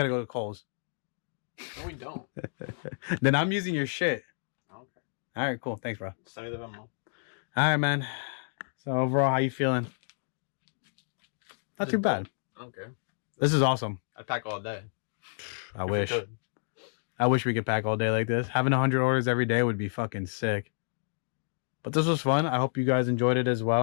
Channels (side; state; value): right; silent; digital silence